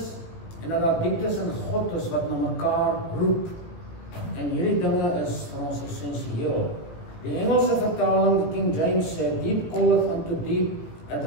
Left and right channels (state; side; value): late; right; 18 ms